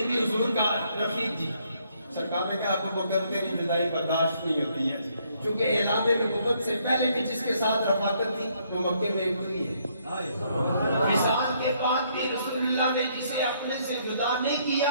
بھی حضور کا رفیق جی سرکار نے کہا ابو بکر تیری جدائی برداشت نہیں ہوتی ہے، چونکہ اعلان نبوت سے پہلے بھی جس کے ساتھ رفاقت تھی وہ مکے میں ہوئی ہے. مثال کے بعد بھی رسول اللہ نے جسے اپنے سے جدا نہیں کیا،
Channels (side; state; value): both; inverted; correlation -0.70